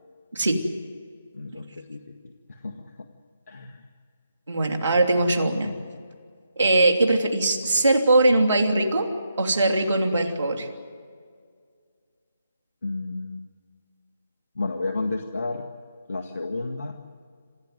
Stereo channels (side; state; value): both; inverted; correlation -0.82